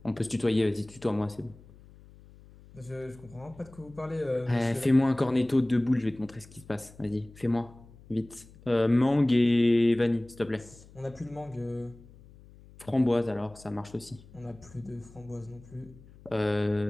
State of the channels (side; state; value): left; noise; hum, 22 dB below the sound